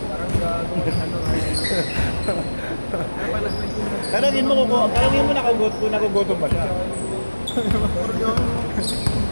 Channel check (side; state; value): both; inverted; correlation -1.00